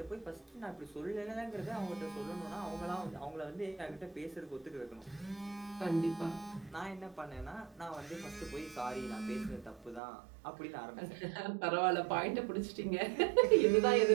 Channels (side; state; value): left; drops out; at 10.0 s